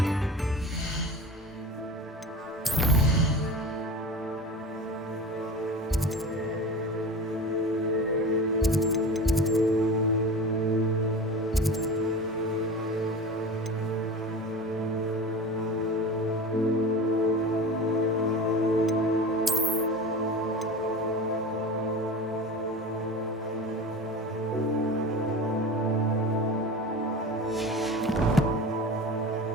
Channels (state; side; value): normal; both; correlation 0.32